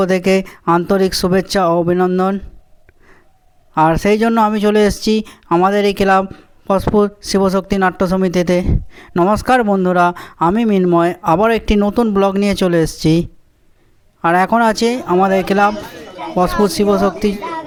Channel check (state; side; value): identical; both; correlation 1.00